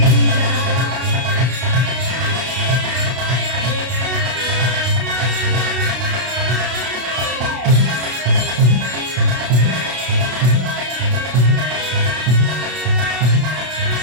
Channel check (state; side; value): late; left; 32 ms